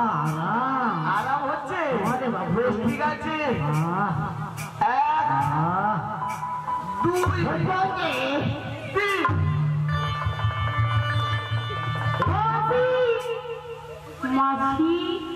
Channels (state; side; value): identical; both; correlation 1.00